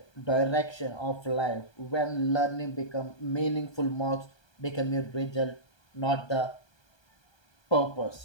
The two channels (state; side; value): late; right; 1.3 ms